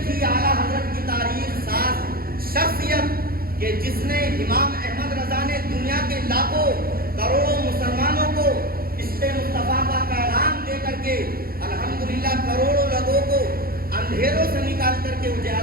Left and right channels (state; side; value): late; left; 0.43 ms